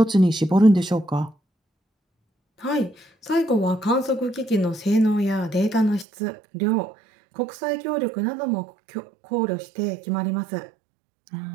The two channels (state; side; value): drops out; left; at 6.1 s